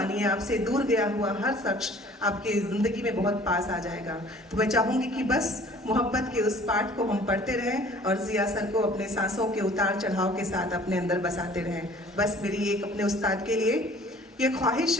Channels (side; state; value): both; normal; correlation 0.52